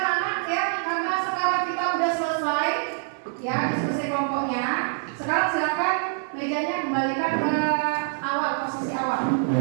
Ya, diskusi kelompoknya. Sekarang silakan mejanya kembalikan ke awal, posisi awal.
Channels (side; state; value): left; silent; 62 dB below the other